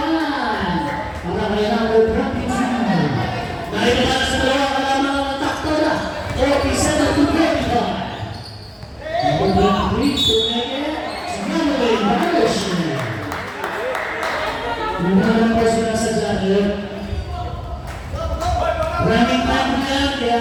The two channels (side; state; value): both; identical; correlation 1.00